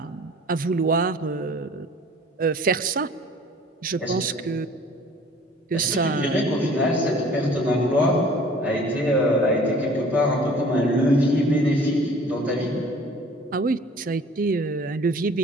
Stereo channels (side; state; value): both; normal; correlation 0.49